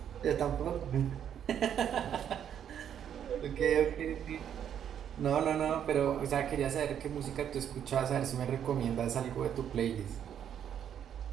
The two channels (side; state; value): left; quieter; 9.2 dB